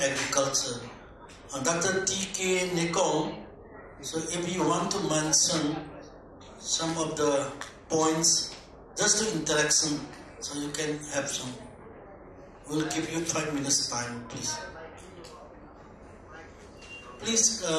Agriculture. Dr. T.K. Nekong, so if you want to mention some of the points, just to interaction, so you can have some. We'll give you 5 minutes time, please. Please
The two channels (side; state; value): both; identical; correlation 1.00